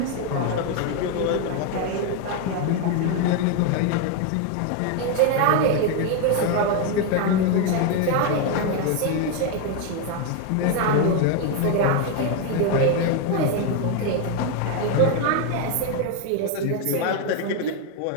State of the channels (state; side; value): different; both; correlation 0.01